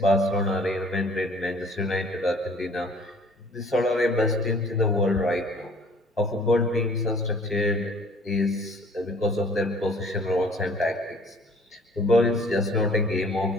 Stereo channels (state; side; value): normal; both; correlation 0.54